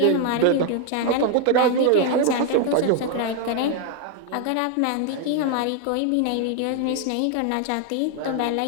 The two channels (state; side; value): different; both; correlation 0.01